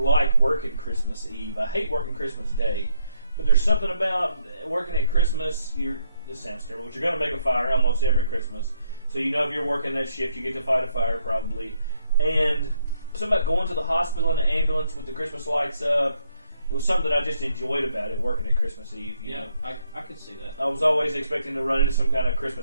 working Christmas Eve. I hate working Christmas Day. But there's something about working at Christmas. This sounds terrible, but you're going to make a fire almost every Christmas. So if you're working that shift, you get to fight a fire probably. And something about going to the hospital in an ambulance with the Christmas lights up. It was something that I just enjoyed about it, working at Christmas Eve. You know? I could see that. I was always expecting to run into some kind of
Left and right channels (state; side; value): inverted; both; correlation -0.73